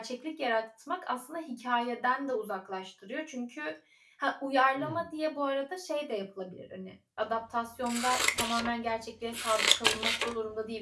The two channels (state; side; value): identical; both; correlation 1.00